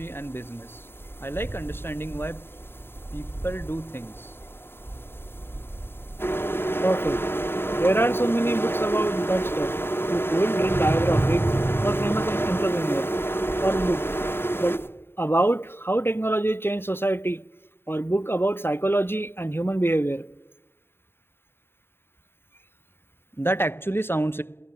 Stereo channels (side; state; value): right; late; 0.11 ms